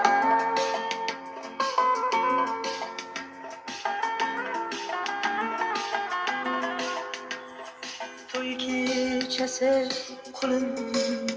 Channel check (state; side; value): identical; both; correlation 1.00